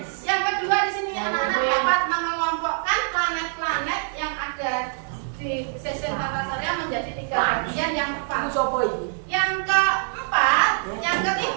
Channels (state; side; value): silent; left; 62 dB below the other